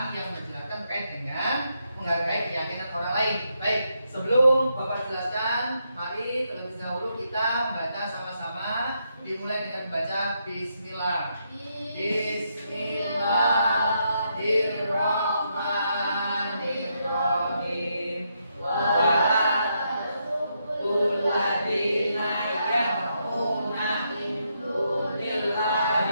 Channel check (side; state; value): both; inverted; correlation -0.79